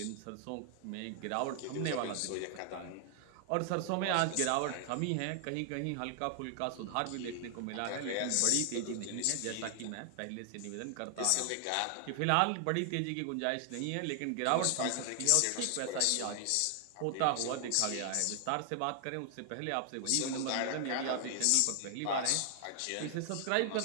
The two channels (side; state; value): both; different; correlation 0.00